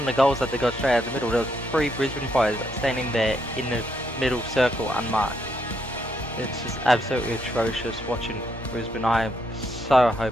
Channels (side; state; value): both; normal; correlation 0.76